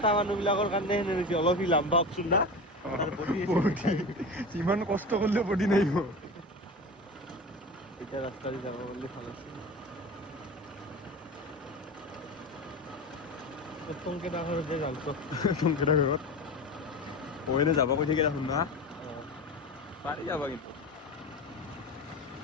মানুহবিলাকৰ কাৰণে হেনে নেকি অলপ লাম্বা অপচন না তাৰ বডি যিমান কষ্ট কৰিলেও বডি নাহিব এটা ৰাস্তা দি যাব বুলি ভাল আছে টংকে ডাঙৰ যে যাওঁতো টংকেটা ঘৰত কইনে যাব কৈ থাকে দেখোন না পাৰি যাবা কিন্তু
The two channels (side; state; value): both; normal; correlation 0.29